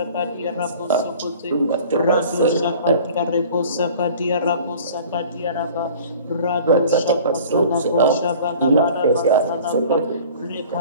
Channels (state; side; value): inverted; both; correlation -0.46